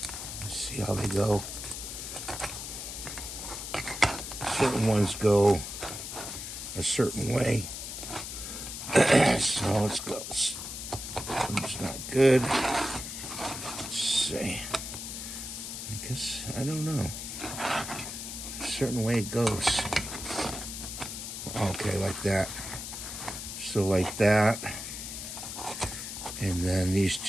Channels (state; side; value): noise; left; hiss, 7 dB below the sound